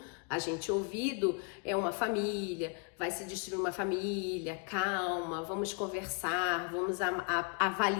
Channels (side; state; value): right; quieter; 35.3 dB